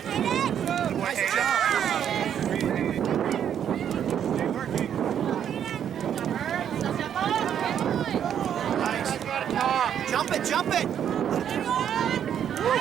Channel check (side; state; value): left; quieter; 9.2 dB